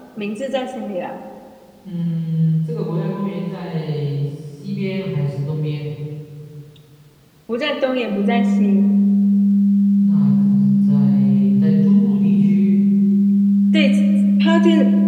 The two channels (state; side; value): identical; both; correlation 1.00